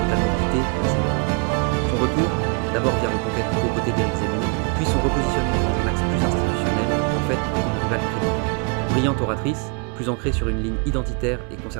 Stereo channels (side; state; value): left; quieter; 34.3 dB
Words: quitté la scène politique. Son retour, d'abord via Reconquête aux côtés d'Éric Zemmour, puis son repositionnement dans un axe plus institutionnel, en fait une rivale crédible. Brillante oratrice, plus ancrée sur une ligne identitaire et